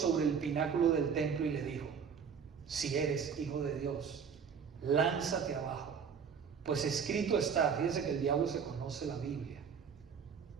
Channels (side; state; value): left; quieter; 6.7 dB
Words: el pináculo del templo y le dijo, si eres hijo de Dios, lánzate abajo, pues escrito está. Fíjense que el diablo se conoce la Biblia.